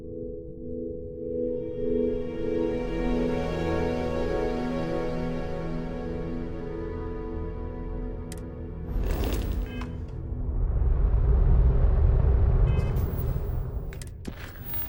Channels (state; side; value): identical; both; correlation 1.00